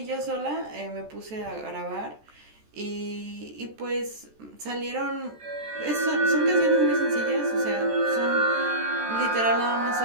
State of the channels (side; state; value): left; late; 14 ms